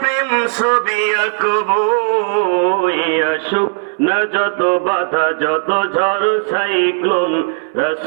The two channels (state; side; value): silent; left; digital silence